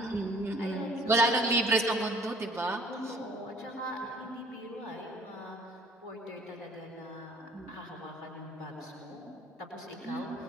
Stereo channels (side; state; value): both; normal; correlation 0.54